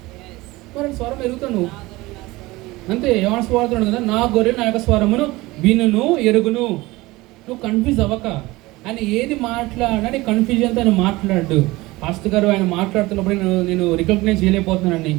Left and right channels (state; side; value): quieter; left; 20.5 dB